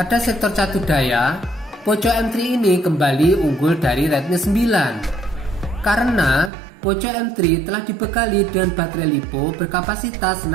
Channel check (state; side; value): drops out; left; at 6.5 s